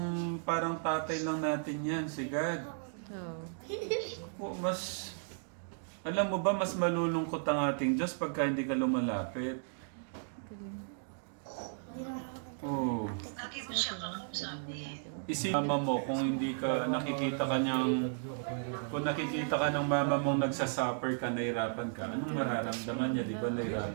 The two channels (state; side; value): silent; left; digital silence